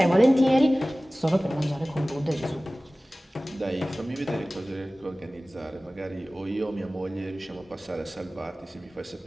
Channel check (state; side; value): normal; both; correlation 0.98